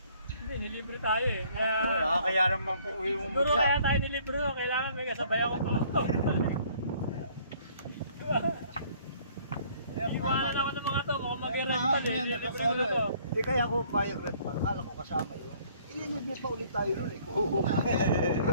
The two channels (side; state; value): both; inverted; correlation -0.59